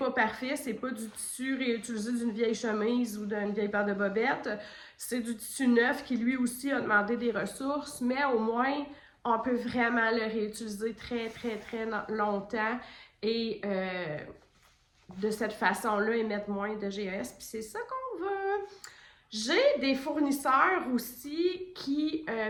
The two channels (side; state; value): both; identical; correlation 1.00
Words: parfait. C'est pas du tissu réutilisé d'une vieille chemise ou d'une vieille paire de bobettes. C'est du tissu neuf qui, lui aussi, a demandé des ressources. Mais au moins, on peut vraiment le réutiliser très, très, très longtemps et de cette façon-là émettre moins de GES. Puis c'est ça qu'on veut. J'ai des fournisseurs aussi qui